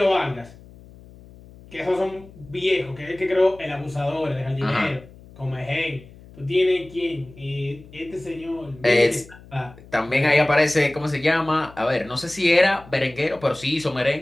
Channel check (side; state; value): left; noise; hum, 21 dB below the sound